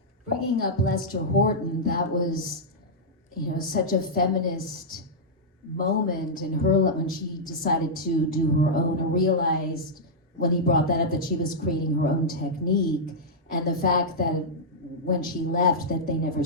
Bringing up Lester Horton, that was, such a feminist moment in her when she decided to do her own, and realized when he brought that up that she was creating her own technique, and the fact that when she left that they never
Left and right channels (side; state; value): both; normal; correlation -0.09